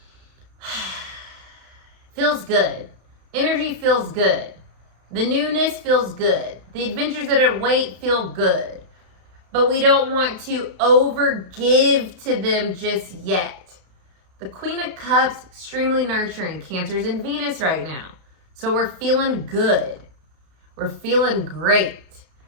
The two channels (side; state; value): left; late; 33 ms